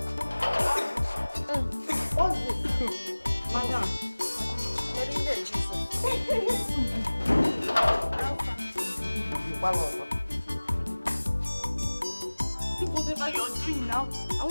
what's this? Madam. Whatever you're doing now, I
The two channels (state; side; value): inverted; both; correlation -1.00